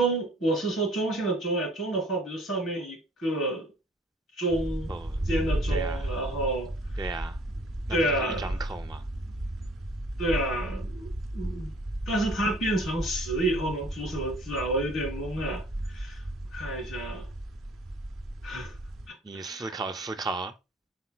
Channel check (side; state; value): both; normal; correlation 0.54